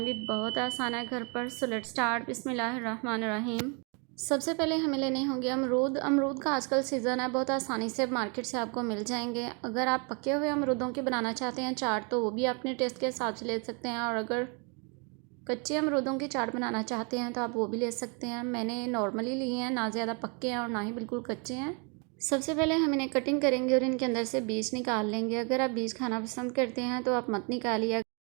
भी बहुत आसान है घर पर। So let's start. बिस्मिल्लाहिर्रहमानिर्रहीम। सबसे पहले हमें लेने होंगे अमरूद। अमरूद का आजकल सीज़न है, बहुत आसानी से मार्केट से आपको मिल जाएंगे। अगर आप पके हुए अमरूदों की बनाना चाहते हैं चाट, तो वो भी अपने टेस्ट के हिसाब से ले सकते हैं, और अगर कच्चे अमरूदों की चाट बनाना चाहते हैं तो आप वो भी ले सकते हैं। मैंने नॉर्मली लिए हैं, ना ज़्यादा पक्के हैं और ना ही बिल्कुल कच्चे हैं। सबसे पहले हम इन्हें कटिंग करेंगे और इनके अंदर से बीज निकाल लेंगे। अगर आप बीज खाना पसंद करते हैं तो आप मत निकालिए,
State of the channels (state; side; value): quieter; left; 35.0 dB